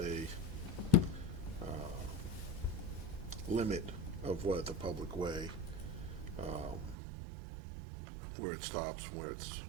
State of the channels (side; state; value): left; drops out; at 7.0 s